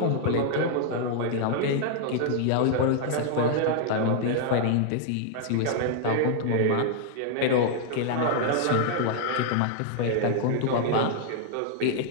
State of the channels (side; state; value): both; different; correlation -0.01